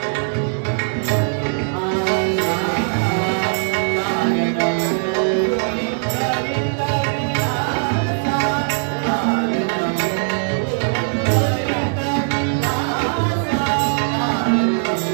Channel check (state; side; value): silent; left; 66 dB below the other